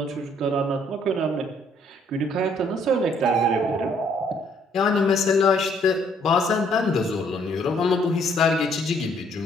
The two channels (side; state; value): both; normal; correlation 0.66